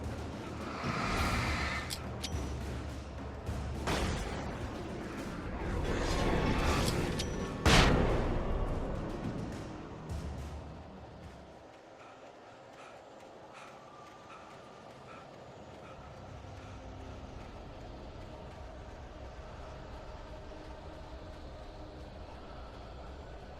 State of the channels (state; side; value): identical; both; correlation 1.00